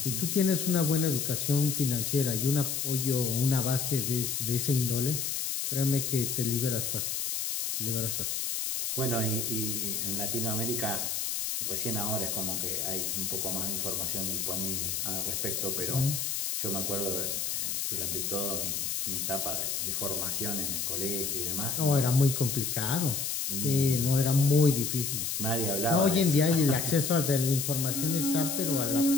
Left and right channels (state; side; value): noise; left; hiss, 1 dB below the sound